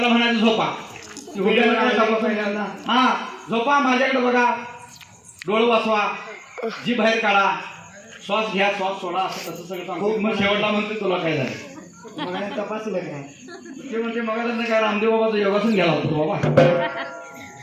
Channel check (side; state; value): both; identical; correlation 1.00